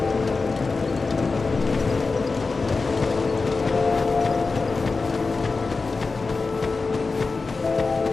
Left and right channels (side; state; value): right; quieter; 4.1 dB